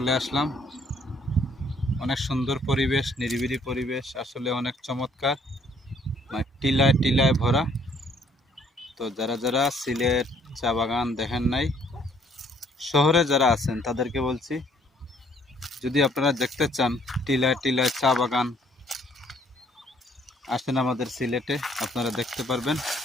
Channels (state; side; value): normal; both; correlation 0.63